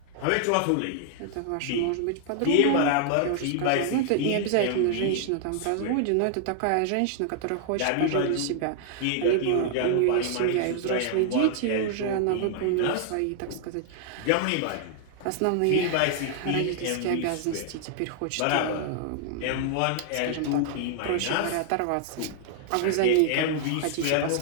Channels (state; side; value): different; both; correlation -0.01